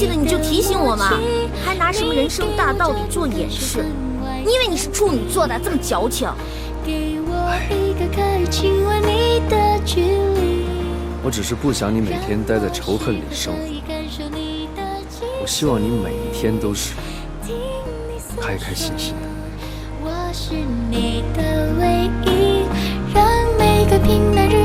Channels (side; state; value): both; identical; correlation 1.00